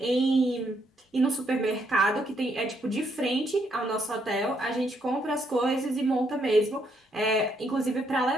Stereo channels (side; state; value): both; normal; correlation 0.74